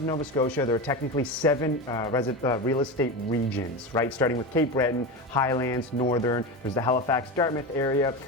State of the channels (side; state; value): both; normal; correlation 0.21